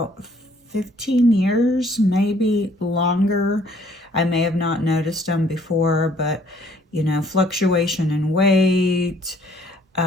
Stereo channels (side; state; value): both; normal; correlation 0.61